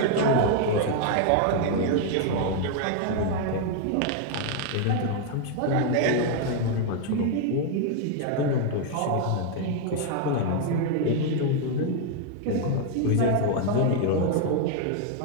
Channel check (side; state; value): both; different; correlation 0.00